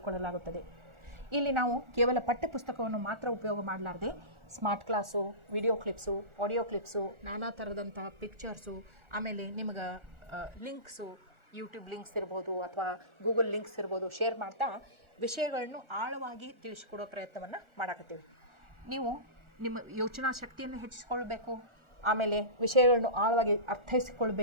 ಇಲ್ಲಿ ನಾವು ಕೇವಲ ಪಠ್ಯಪುಸ್ತಕವನ್ನು ಮಾತ್ರ ಉಪಯೋಗ ಮಾಡಲಾರದೆ smart class, video clips, audio clips, ನಾನಾ ಥರದಂಥ ಪಿಕ್ಚರ್ಸು, ಆಮೇಲೆ ನಿಮಗೆ ಲಿಂಕ್ಸು, ಯೂಟ್ಯೂಬ್ ಲಿಂಕ್ಸ್ ಇರ್ಬೋದು ಅಥವಾ ಗೂಗಲ್ ಲಿಂಕ್ಸ್ ಇರ್ಬೋದು ಶೇರ್ ಮಾಡ್ತಾ ವಿಷಯಗಳನ್ನು ಆಳವಾಗಿ ತಿಳಿಸಿಕೊಡೋ ಪ್ರಯತ್ನವನ್ನು ಮಾಡಕತ್ತೀವಿ. ನೀವು ನಿಮ್ಮ ಯೋಚನಾ ಶಕ್ತಿಯನ್ನು ಹೆಚ್ಚಿಸ್ಕೊಳ್ಬೇಕು, ಆಮೇಲೆ ವಿಷಯಗಳನ್ನು ಆಳವಾಗಿ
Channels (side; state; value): left; late; 1.4 ms